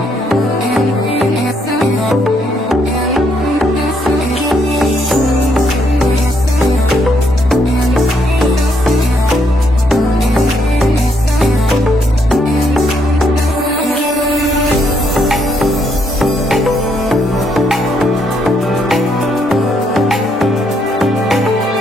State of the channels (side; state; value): both; normal; correlation 0.73